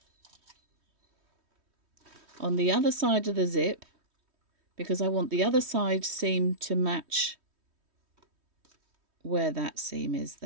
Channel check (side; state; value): left; late; 3.1 ms